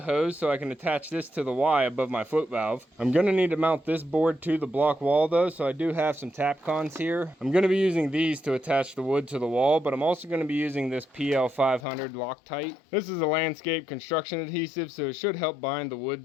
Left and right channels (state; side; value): drops out; right; at 11.9 s